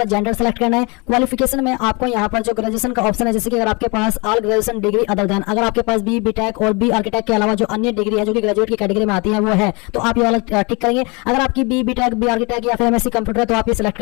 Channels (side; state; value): right; quieter; 28.8 dB